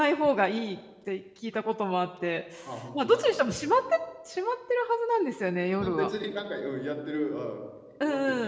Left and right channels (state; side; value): identical; both; correlation 1.00